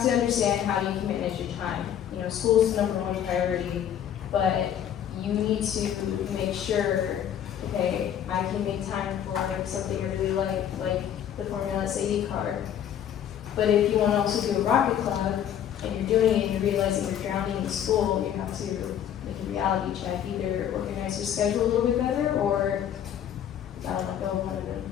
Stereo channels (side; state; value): right; quieter; 9.8 dB